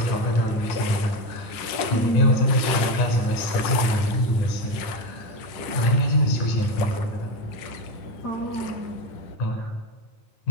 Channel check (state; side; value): late; right; 10 ms